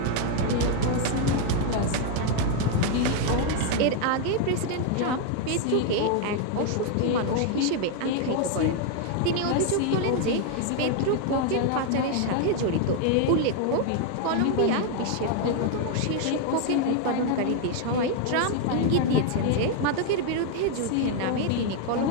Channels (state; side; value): different; both; correlation 0.01